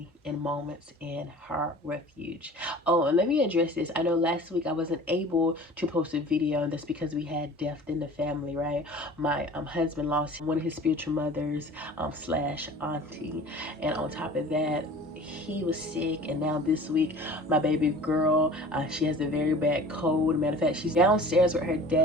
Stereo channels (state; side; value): normal; both; correlation 0.43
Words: in Moments in Her Refuge. Oh, and let me address this. I know last week I wasn't able to post a video, and that's because we had death in the family, right? My husband lost one of his spiritual mothers slash auntie, and on top of that, he was sick. And now this week, my baby girl, she has a very bad cold. Matter of fact, she's downstairs with her